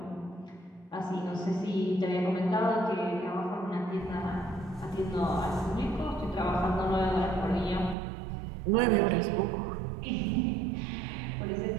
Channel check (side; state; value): left; drops out; at 8.0 s